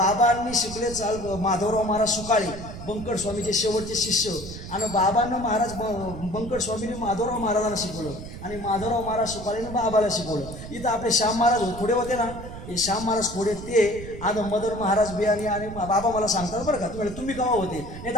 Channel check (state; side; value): noise; right; rumble, 11 dB below the sound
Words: शिकले चाल माधवराव महाराज सुकाळे बंकट स्वामीचे शेवटचे शिष्य. आणि बाबांना महाराज बंकट स्वामीने माधवराव महाराजांना शिकवलं आणि माधवराव महाराज सुकाळेने बाबाला शिकवलं. इथं आपले श्याम महाराज थोडे होते ना, हे श्याम महाराज थोडे ते आज मदर महाराज बियाणी आणि बाबा मला सांगतात बरं का. तुम्ही केव्हा होते नाही